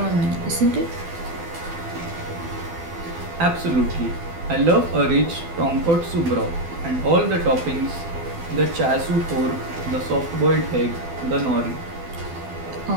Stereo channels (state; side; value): late; left; 12 ms